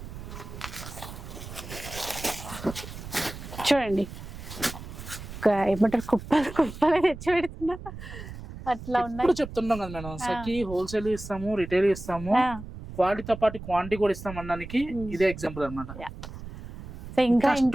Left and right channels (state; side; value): noise; right; rumble, 12 dB below the sound